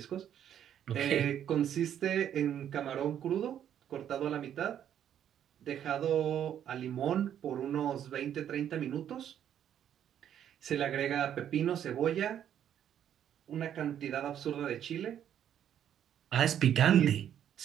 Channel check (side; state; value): left; quieter; 9.9 dB